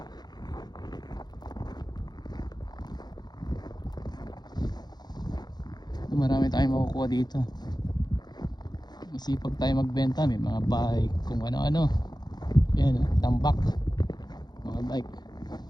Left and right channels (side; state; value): right; late; 0.20 ms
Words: Marami tayong makukuha dito. Masipag tayo magbenta, may mga bike, kung ano-ano. Yan, tambak, mga bike.